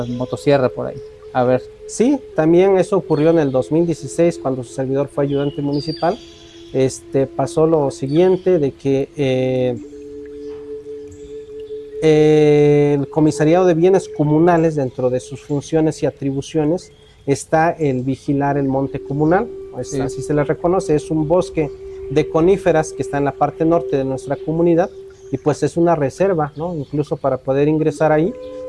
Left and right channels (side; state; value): both; identical; correlation 1.00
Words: motosierra por ahí. A ver. Sí, también eso ocurrió en el 2016 cuando su servidor fue ayudante municipal. Pasó lo siguiente de que el Comisariado de Bienes Comunales, dentro de sus funciones y atribuciones, está el vigilar el monte comunal, sí. Así se le reconoce, es un bosque de coníferas que está en la parte norte de nuestra comunidad y pues es una reserva, ¿no? Incluso para poder ingresar ahí